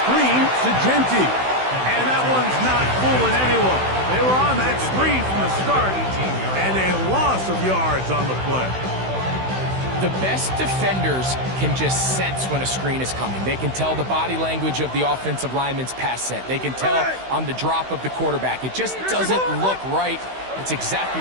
to Genty. And that one's not fooling anyone. They were on that screen from the start, and a loss of yards on the play. The best defenders can just sense when a screen is coming. They can tell the body language of the offensive lineman's pass set. They can tell on the drop of the quarterback. It just doesn't look right. It's exactly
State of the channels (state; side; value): late; left; 16 ms